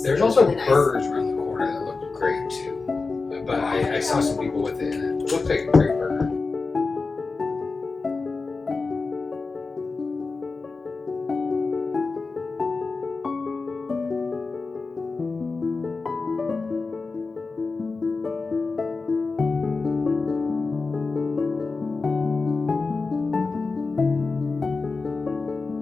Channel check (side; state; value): right; quieter; 4.1 dB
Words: it was also really nice. burgers around the corner that looked great too. But I saw some people with it, and it looked like a great burger.